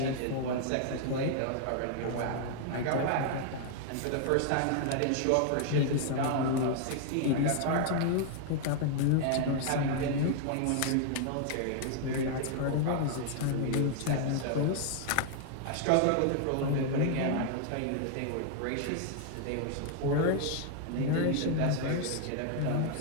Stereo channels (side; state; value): both; different; correlation 0.00